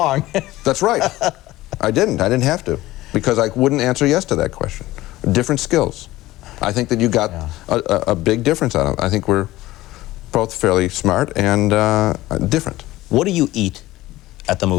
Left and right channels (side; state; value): right; quieter; 17.2 dB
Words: That's right. I didn't have to, because I wouldn't answer yes to that question. Different skills. I think that you got a big difference out of it. I think we're both fairly smart and different. What do you eat at the